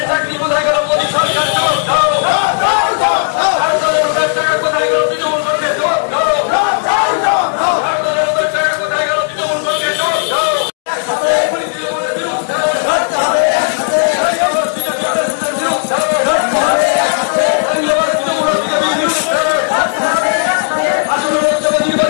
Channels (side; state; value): right; silent; digital silence